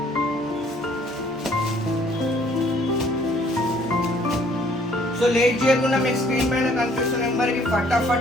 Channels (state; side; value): normal; both; correlation 0.60